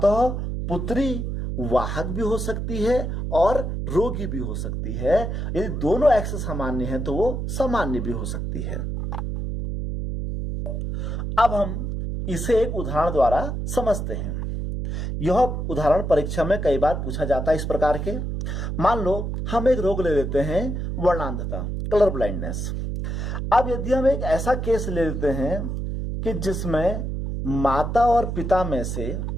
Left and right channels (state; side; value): noise; right; hum, 3 dB below the sound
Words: पुत्री वाहक भी हो सकती है और रोगी भी हो सकती है। यदि दोनों X सामान्य है तो वो सामान्य भी हो सकती है। अब हम इसे एक उदाहरण द्वारा समझते हैं। यह उदाहरण परीक्षा में कई बार पूछा जाता है इस प्रकार के। मान लो हम एक रोग ले लेते हैं, वर्णांधता, कलर ब्लाइंडनेस। अब यदि हम एक ऐसा केस ले लेते हैं कि जिसमें माता और पिता में से